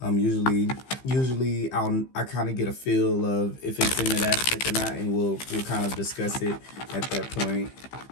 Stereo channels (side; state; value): right; late; 15 ms